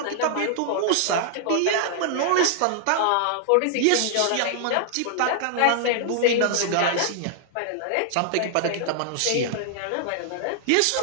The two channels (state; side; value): different; both; correlation -0.01